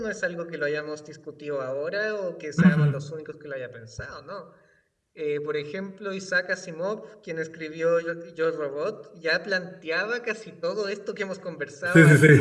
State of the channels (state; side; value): identical; both; correlation 1.00